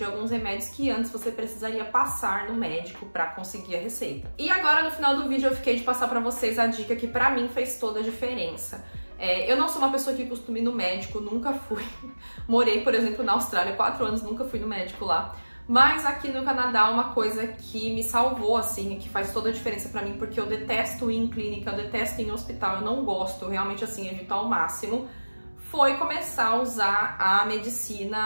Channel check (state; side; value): inverted; both; correlation -1.00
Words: alguns remédios que antes você precisaria passar no médico para conseguir a receita. E agora no final do vídeo eu fiquei de passar para vocês a dica que para mim fez toda a diferença. Eu não sou uma pessoa que costuma ir no médico, nunca fui. Morei, por exemplo, na Austrália 4 anos, nunca fui no médico lá. Mas aqui no Canadá, uma coisa que me salvou, assim, que faz toda a diferença pra mim, porque eu detesto ir em clínica, eu detesto ir em hospital, eu não gosto, realmente, assim, evito ao máximo, foi começar a usar a